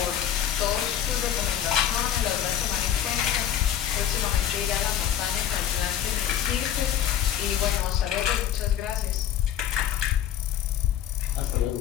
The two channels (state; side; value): quieter; right; 10.2 dB